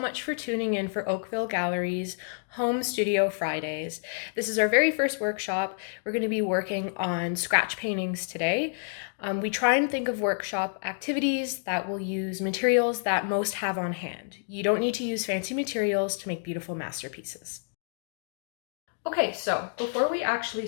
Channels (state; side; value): silent; right; digital silence